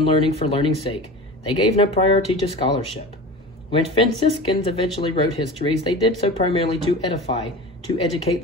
learning for learning's sake, they gave no priority to scholarship. When Franciscans eventually wrote histories, they did so primarily to edify, to educate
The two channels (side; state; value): both; normal; correlation 0.32